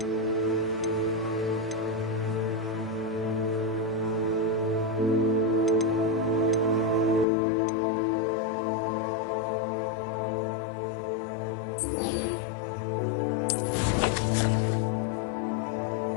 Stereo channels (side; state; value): right; drops out; at 7.2 s